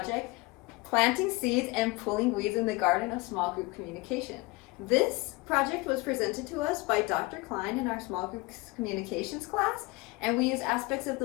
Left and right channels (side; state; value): right; quieter; 23.2 dB